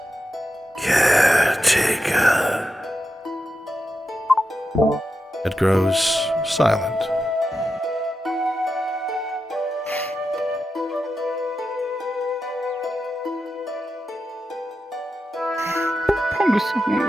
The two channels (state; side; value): normal; both; correlation 0.89